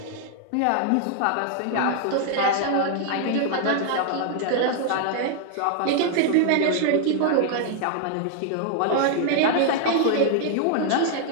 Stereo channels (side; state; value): both; different; correlation 0.00